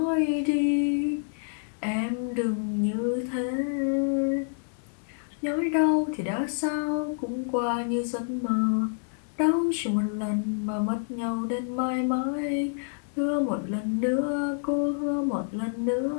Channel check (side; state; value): right; silent; 60 dB below the other